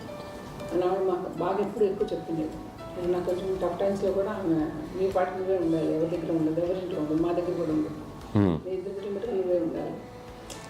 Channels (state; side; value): identical; both; correlation 1.00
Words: అని ఆవిడ మాకు బాగా ఎప్పుడు ఎక్కువ చెప్తుండేది. నాకు కొంచెం టఫ్ టైమ్స్లో కూడా ఆమె నీ పాటు నువ్వే ఉండాలి, ఎవరి దగ్గర ఉండదు, ఎవరింట్లో ఉండదు, మా దగ్గర కూడా ఉండదు, నీ దగ్గర మటుకు నువ్వే ఉండాలి.